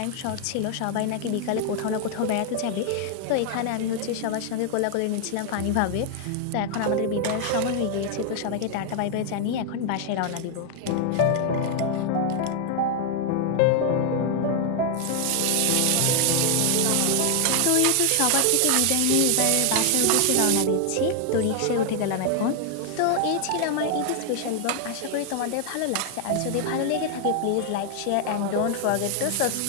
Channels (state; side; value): different; both; correlation 0.00